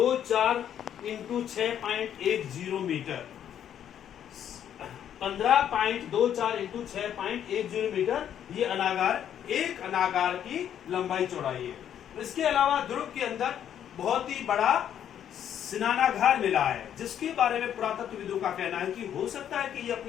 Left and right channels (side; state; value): right; quieter; 9.8 dB